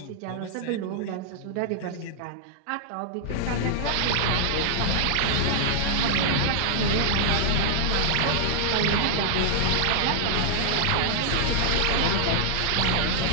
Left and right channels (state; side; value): different; both; correlation -0.01